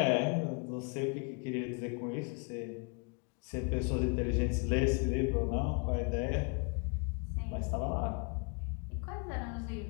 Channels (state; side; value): quieter; right; 34.6 dB